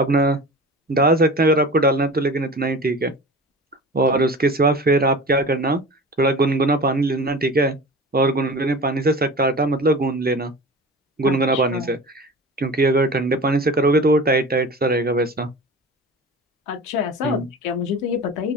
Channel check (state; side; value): normal; both; correlation 0.35